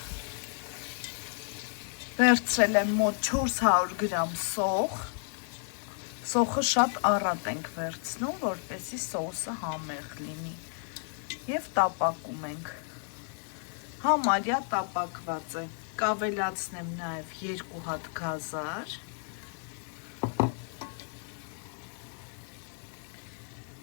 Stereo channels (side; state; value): right; silent; 56 dB below the other